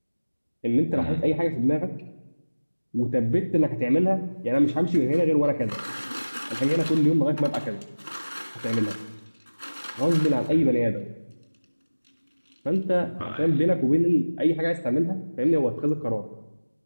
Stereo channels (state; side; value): inverted; both; correlation -1.00